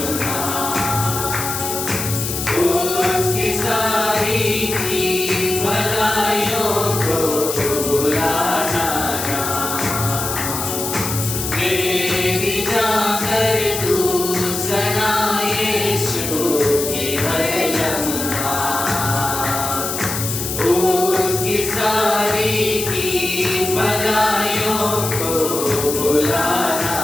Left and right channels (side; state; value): left; noise; hiss, 4 dB below the sound